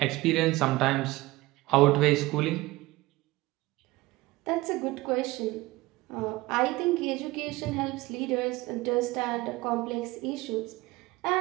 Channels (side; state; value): left; quieter; 19.9 dB